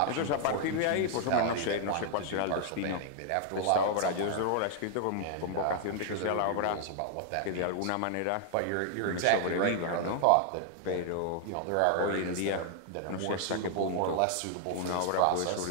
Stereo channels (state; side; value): different; both; correlation 0.00